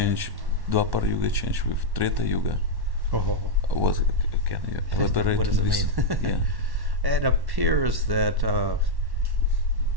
Dwapara Yuga, changed with Treta Yuga. What can you elaborate? What does on it this? mean? Yeah. It appears that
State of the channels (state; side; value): late; left; 1.1 ms